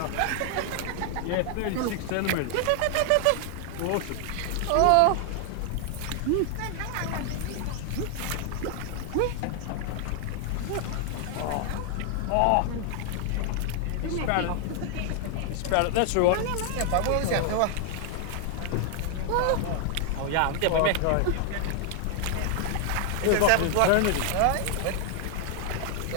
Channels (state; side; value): different; both; correlation 0.00